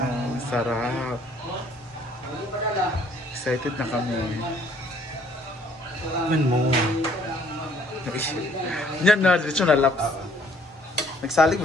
sarap. Excited na kami. Man mo. Yan na, diretso na laps. Nagsalig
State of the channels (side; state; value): both; normal; correlation 0.61